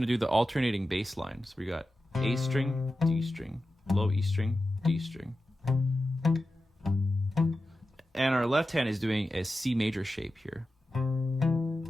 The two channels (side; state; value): both; normal; correlation 0.92